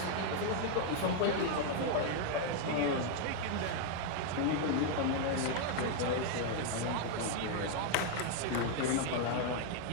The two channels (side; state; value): both; different; correlation 0.00